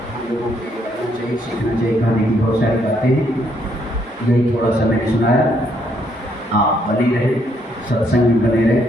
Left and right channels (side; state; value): both; normal; correlation 0.72